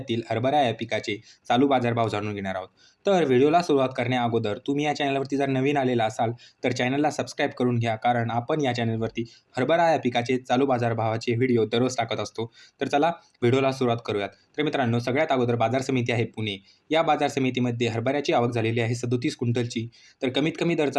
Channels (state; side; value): identical; both; correlation 1.00